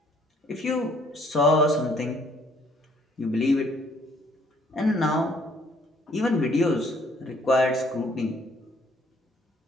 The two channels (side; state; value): both; normal; correlation 0.62